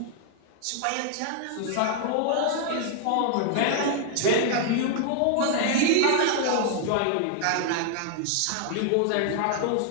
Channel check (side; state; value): both; different; correlation 0.00